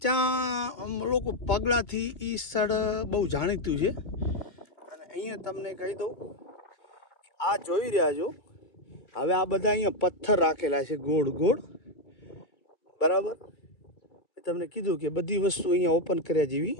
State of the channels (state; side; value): late; right; 2.2 ms